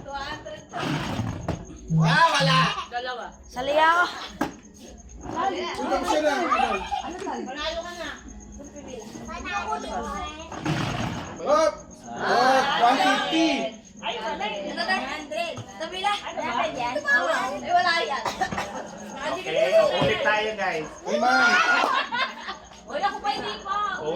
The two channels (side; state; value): both; identical; correlation 1.00